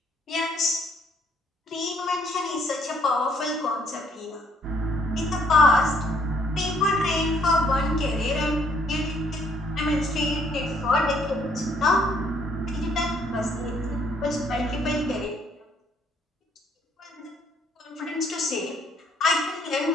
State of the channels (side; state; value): both; normal; correlation 0.66